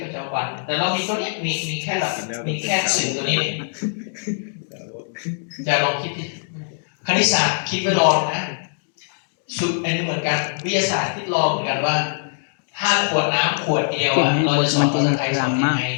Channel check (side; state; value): right; silent; digital silence